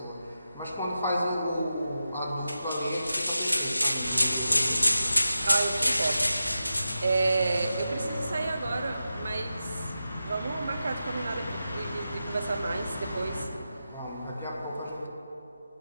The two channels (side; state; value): both; inverted; correlation -0.91